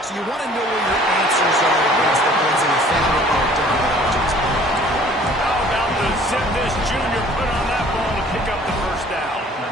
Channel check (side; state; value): both; normal; correlation 0.53